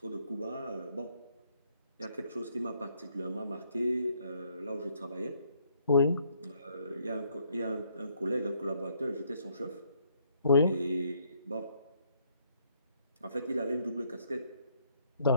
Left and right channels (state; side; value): inverted; both; correlation -0.69